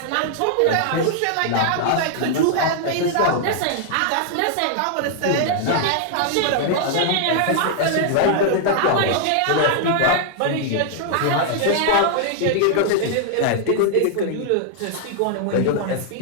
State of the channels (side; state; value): both; different; correlation 0.00